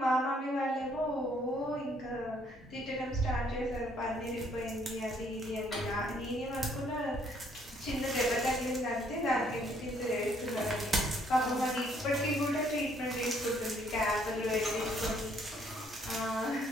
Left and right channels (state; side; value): normal; both; correlation 0.66